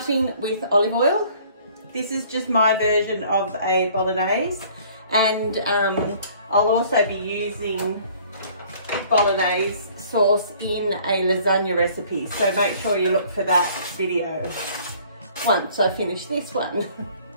with olive oil. This is just my version of a Bolognese, and I'll also be using Bolognese sauce in a lasagna recipe, so make sure you look for that video once I finish this one.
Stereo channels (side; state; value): both; inverted; correlation -0.55